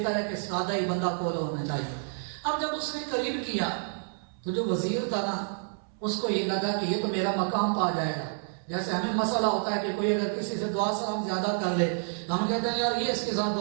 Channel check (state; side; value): silent; left; 59 dB below the other